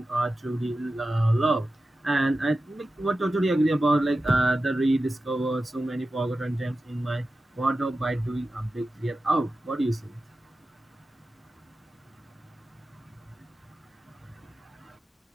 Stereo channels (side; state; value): both; normal; correlation 0.93